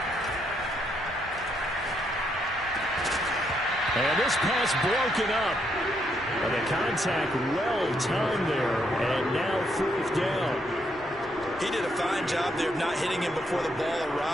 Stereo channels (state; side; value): normal; both; correlation 0.75